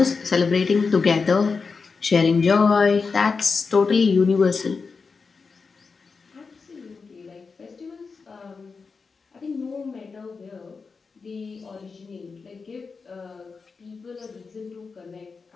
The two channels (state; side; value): quieter; right; 4.8 dB